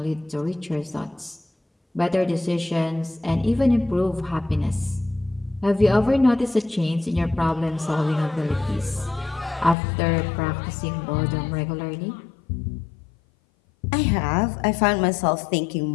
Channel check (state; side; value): drops out; right; at 9.8 s